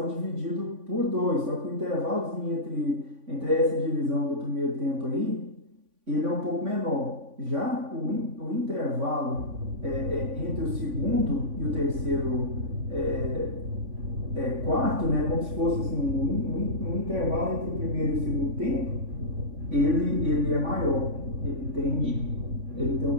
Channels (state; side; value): late; left; 3.5 ms